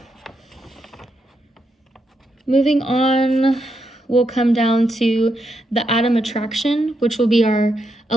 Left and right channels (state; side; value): normal; both; correlation 0.82